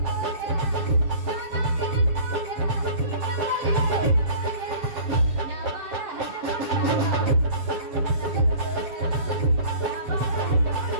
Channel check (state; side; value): late; left; 7.0 ms